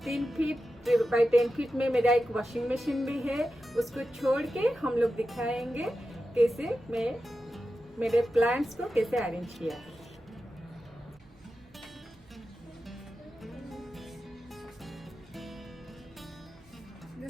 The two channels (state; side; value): noise; right; hum, 29 dB below the sound